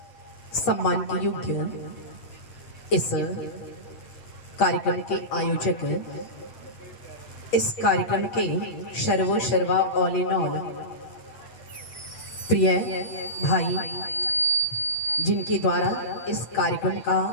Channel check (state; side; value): late; right; 8.2 ms